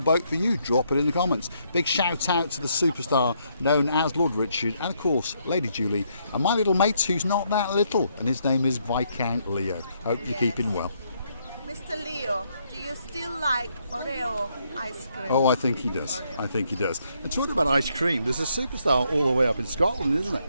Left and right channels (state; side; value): inverted; both; correlation -0.74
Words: for you. Drop it in the comments. Big shout out to the superstar known as Lord Richard, and of course Lady Julie, and my little mate who's not that little, and his name is Viscount Leo. Hope you're keeping well. Mr. Leo, do you still like Oreo ice cream? Oh, I think he does. I think he does. And talking about ice cream, there's a superstar all the way up in Scotland, isn't it?